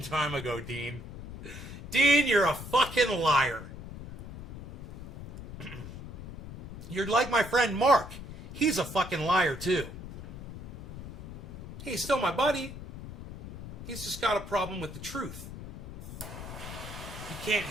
time ago, Dean. Dean, you're a fucking liar. You're like my friend Mark. He's a fucking liar, too. He's still my buddy. He's just got a problem with the truth. He can't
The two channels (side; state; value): left; noise; rumble, 11 dB below the sound